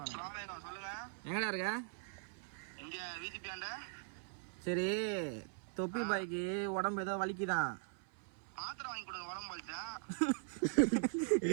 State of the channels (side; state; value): left; silent; 51 dB below the other